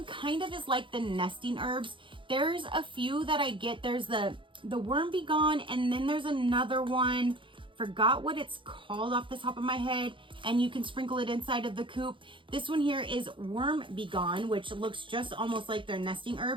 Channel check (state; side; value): late; left; 0.24 ms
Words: kind of is like the nesting herbs. There's a few that I get. There's the Worm Be Gone, and then there's another one. Forgot what it's called off the top of my head, and you can sprinkle it inside of the coop. This one here is Worm Be Gone, which looks just almost like their nesting